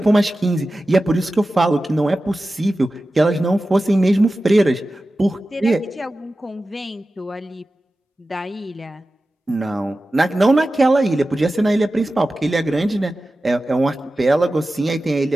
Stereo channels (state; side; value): normal; both; correlation 0.94